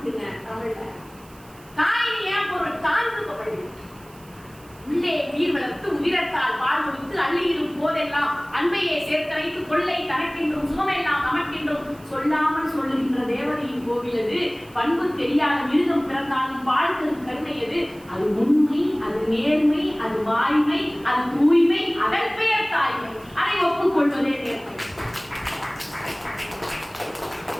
தமிழ்ல. தாயின் ஏன் பொருள்? தாழ்ந்துபவள். உள்ளே நீர் வளர்த்து உதிரத்தால் பால் கொடுத்து அள்ளியிடும் போதெல்லாம் அன்பையே சேர்த்து வைத்து கொள்ளை தனக்கென்றும் சுகமெல்லாம் நமக்கென்றும் சொல்லாமல் சொல்லுகின்ற தேவதையின் கோவிலது. பண்பு தெரியாத மிருகம் பிறந்தாலும் பால் தரும் கருணையது. அது உண்மை, அது நேர்மை, அது வாய்மை, அது தூய்மை, அதன் பெயர் தாய்மை. அதை ஒப்புக்கொள்வதே நேர்மை.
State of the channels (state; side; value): noise; right; hiss, 25 dB below the sound